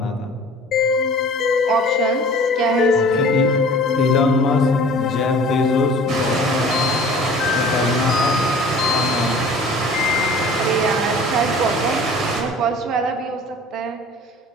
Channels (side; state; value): both; normal; correlation 0.45